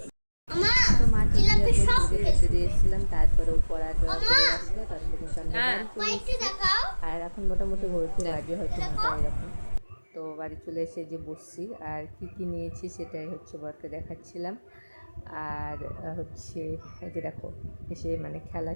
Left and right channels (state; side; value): inverted; both; correlation -1.00